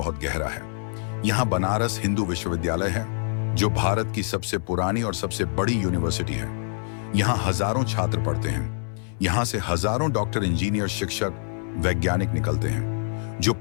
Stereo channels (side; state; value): right; silent; digital silence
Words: गहरा है। यहाँ बनारस हिंदू विश्वविद्यालय है, जो भारत की सबसे पुरानी और सबसे बड़ी यूनिवर्सिटी है। यहाँ हजारों छात्र पढ़ते हैं। यहाँ से हजारों डॉक्टर, इंजीनियर, शिक्षक, वैज्ञानिक निकलते हैं, जो